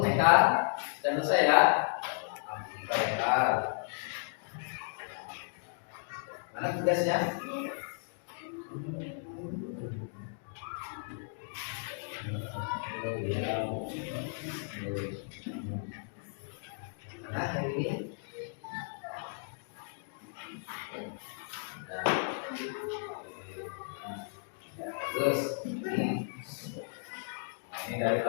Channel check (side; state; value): right; silent; digital silence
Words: Haikal? Sudah selesai ya? Haikal. Mana tugasnya? Oh iya. Mana yang ini? Nah. Ya, bagus. Ini dari